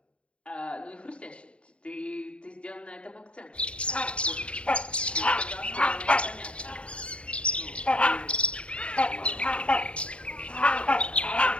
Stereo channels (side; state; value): right; late; 0.059 ms